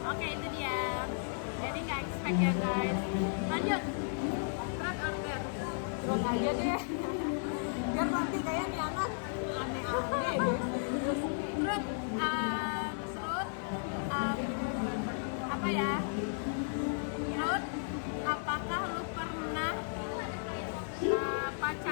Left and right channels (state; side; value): silent; right; digital silence